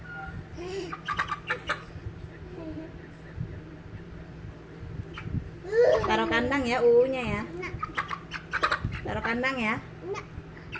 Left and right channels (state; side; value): identical; both; correlation 1.00